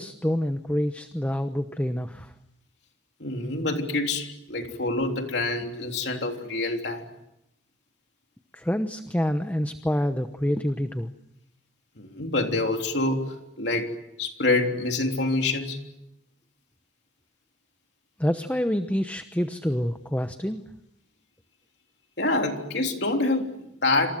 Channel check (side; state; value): both; normal; correlation 0.44